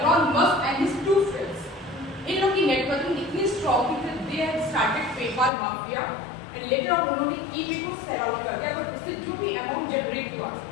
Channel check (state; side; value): drops out; right; at 5.5 s